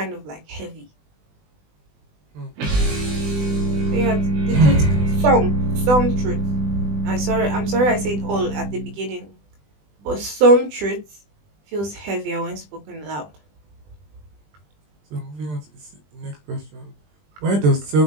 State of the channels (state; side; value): late; left; 20 ms